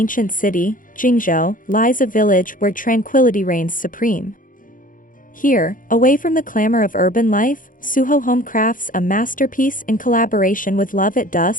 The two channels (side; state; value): right; late; 0.39 ms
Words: city, Jingzhou, lies a village where tranquility reigns supreme. Here, away from the clamor of urban life, SUHO Home crafts a masterpiece in collaboration with Love at